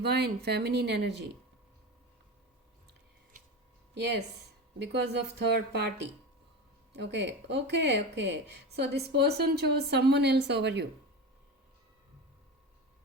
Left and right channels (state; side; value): normal; both; correlation 0.26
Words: feminine energy. Yes, because of third party. Okay. So this person chose someone else over you.